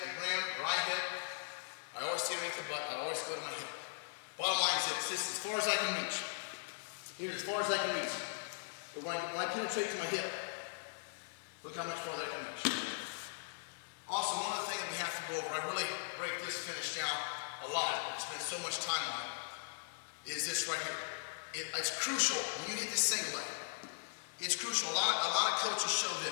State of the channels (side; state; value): right; silent; 52 dB below the other